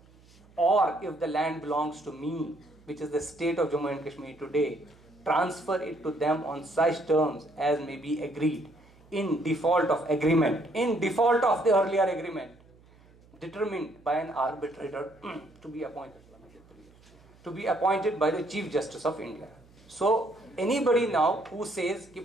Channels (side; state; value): right; noise; hum, 27 dB below the sound